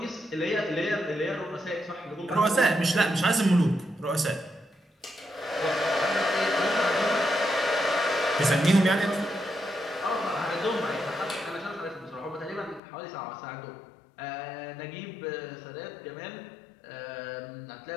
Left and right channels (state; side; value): drops out; right; at 12.8 s